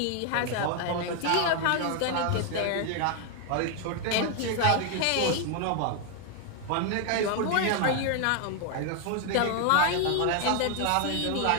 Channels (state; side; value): different; both; correlation 0.00